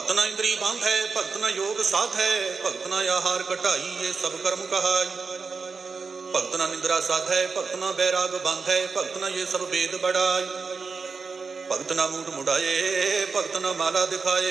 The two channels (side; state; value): left; quieter; 4.8 dB